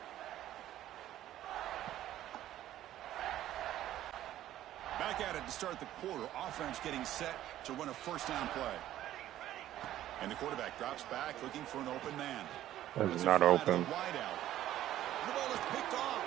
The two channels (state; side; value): quieter; left; 13.1 dB